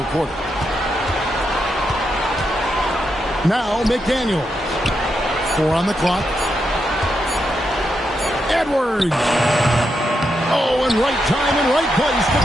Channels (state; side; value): normal; both; correlation 0.83